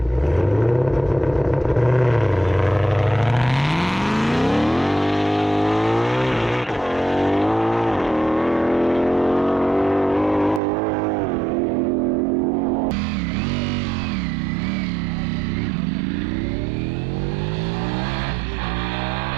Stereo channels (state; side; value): drops out; left; at 10.6 s